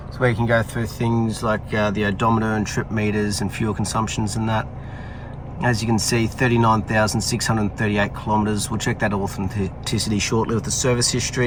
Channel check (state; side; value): identical; both; correlation 1.00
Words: is where you can go through things like the odometer and trip meters and fuel consumptions and that. As you can see, 39,638 kilometers. We'll check that authenticity shortly with the service